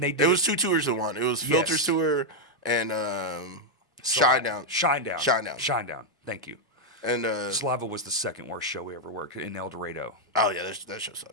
it was 2 tours in one. It was Filters tour and Shine Down. Thank you. And Slava was the second worst show we ever worked in El Dorado. Oh yeah, that show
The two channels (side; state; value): both; normal; correlation -0.01